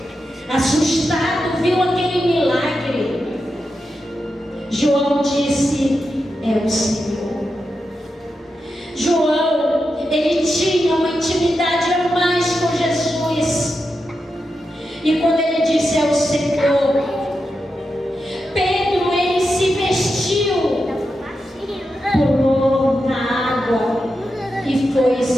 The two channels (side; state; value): both; normal; correlation 0.88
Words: assustado, viu aquele milagre, João disse, é o Senhor. João, ele tinha uma intimidade a mais com Jesus. E quando ele disse, é o Senhor, Pedro, ele se vestiu, pulou na água e foi